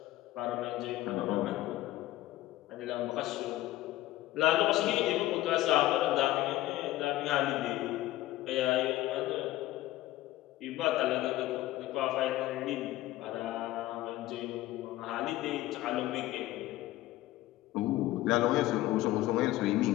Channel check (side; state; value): right; quieter; 16.2 dB